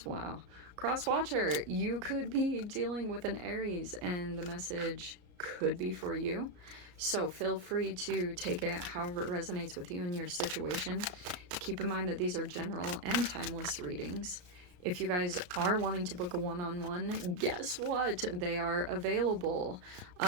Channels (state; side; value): late; left; 33 ms